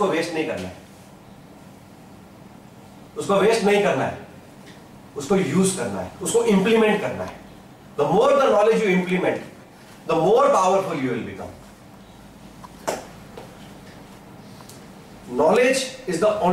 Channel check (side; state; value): both; identical; correlation 1.00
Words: वेस्ट नहीं करना है, उसको वेस्ट नहीं करना है, उसको यूज करना है, उसको इंप्लीमेंट करना है। The more the knowledge you implement, the more powerful you will become. Knowledge is the